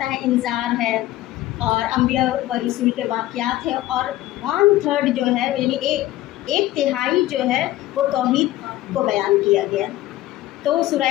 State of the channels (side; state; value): right; quieter; 15.4 dB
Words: ہے انذار ہے اور انبیاء و رسول کے واقعات ہے، اور 1/3 جو ہے یعنی 1/3 جو ہے وہ توحید کو بیان کیا گیا۔ تو سورہ